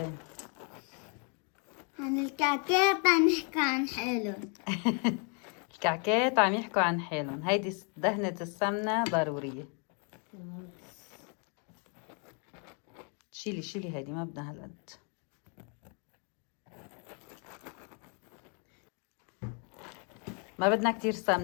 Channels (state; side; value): quieter; right; 38.0 dB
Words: عن الكعكات عم نحكي عن حالهم. الكعكات عم يحكوا عن حالهم. هيدي دهنة السمنة ضرورية. شيلي هيدي، ما بدنا هالقد. ما بدنا كتير